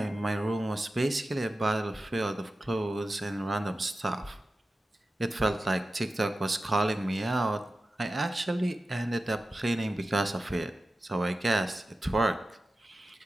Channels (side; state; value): both; normal; correlation 0.94